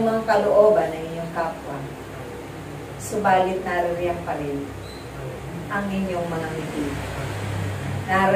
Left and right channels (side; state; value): both; identical; correlation 1.00